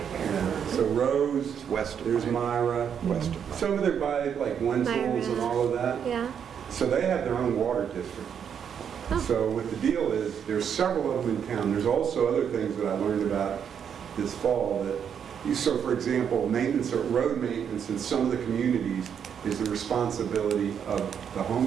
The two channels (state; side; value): quieter; left; 7.9 dB